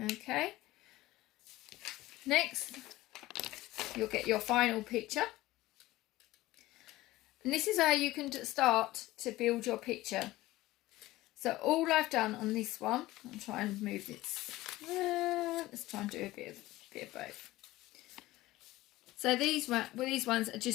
Next, you'll get your final picture. And this is how you can start to build your picture. So all I've done on this one, I'll try and move this. Let's try and do a bit of both. So these ones are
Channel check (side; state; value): right; quieter; 17.6 dB